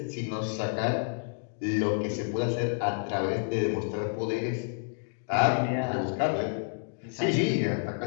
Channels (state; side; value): silent; right; digital silence